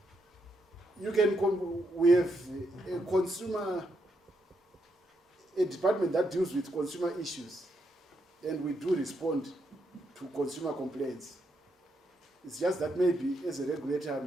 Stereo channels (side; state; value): both; normal; correlation 0.79